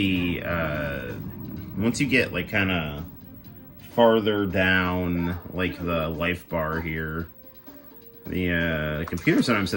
once you get like kind of farther down like the life bar here, the computer sometimes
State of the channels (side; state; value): both; identical; correlation 1.00